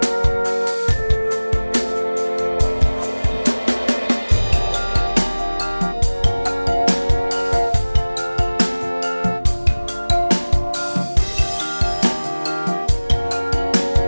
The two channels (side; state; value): both; inverted; correlation -1.00